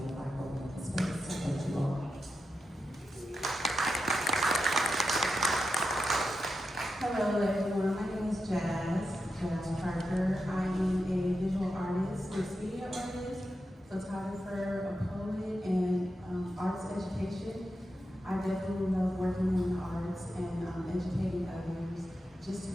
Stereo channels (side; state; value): both; normal; correlation 0.88